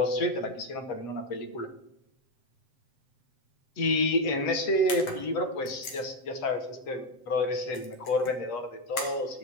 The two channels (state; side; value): late; right; 7.7 ms